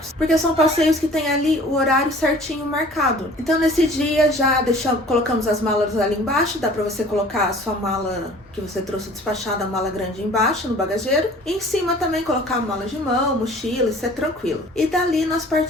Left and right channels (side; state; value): both; normal; correlation 0.49